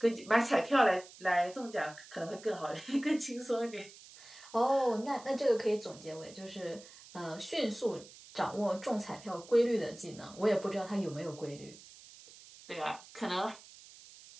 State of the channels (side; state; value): right; noise; hiss, 20 dB below the sound